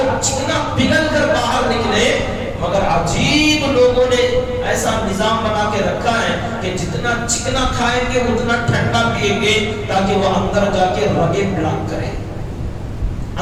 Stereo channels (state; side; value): identical; both; correlation 1.00